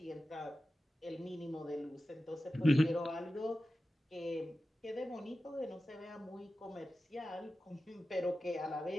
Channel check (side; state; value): both; normal; correlation 0.94